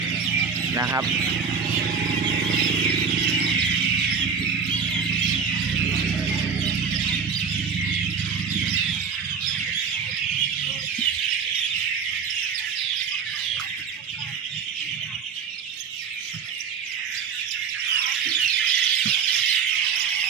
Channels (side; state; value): left; quieter; 6.2 dB